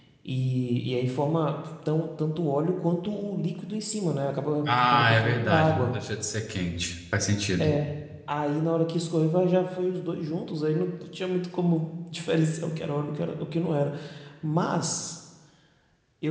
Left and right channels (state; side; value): identical; both; correlation 1.00